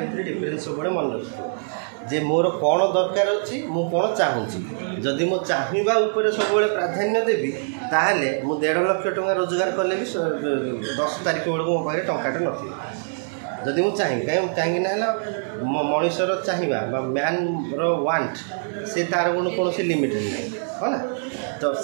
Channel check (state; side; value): silent; left; digital silence